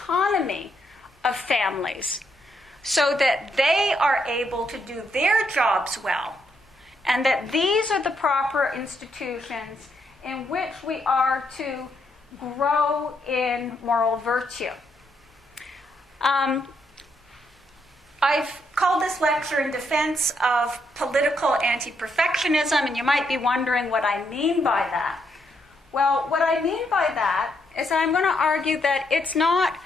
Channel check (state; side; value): normal; both; correlation 0.77